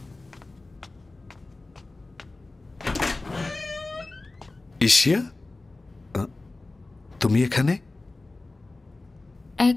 ইশিয়া, তুমি এখানে? এক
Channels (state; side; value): quieter; right; 3.2 dB